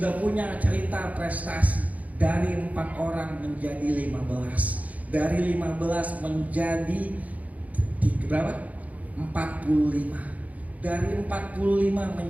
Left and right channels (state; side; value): late; left; 0.073 ms